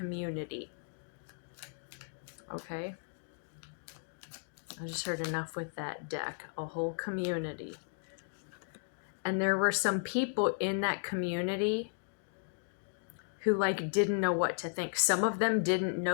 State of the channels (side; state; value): right; silent; digital silence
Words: Okay? I just heard enough with that deck. A whole community. And there were some people in that community who didn't know what to think. Some of them didn't